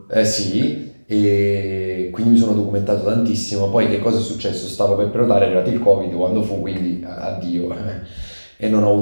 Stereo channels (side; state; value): both; inverted; correlation -1.00